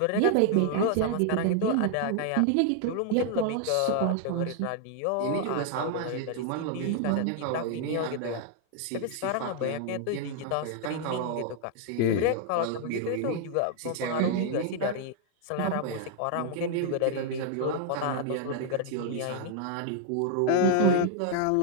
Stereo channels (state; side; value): different; both; correlation 0.00